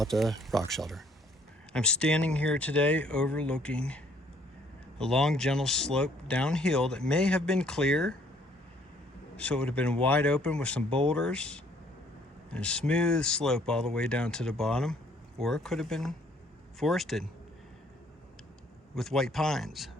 the rock shelter. I'm standing here today overlooking a long gentle slope downhill that may have been clear, so it would have been wide open with some boulders and a smooth slope all the way down to the bottom, or it could have been forested with white pines.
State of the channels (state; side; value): normal; both; correlation 0.62